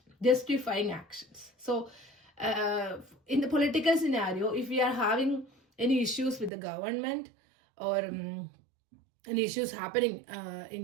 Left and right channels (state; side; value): drops out; left; at 6.5 s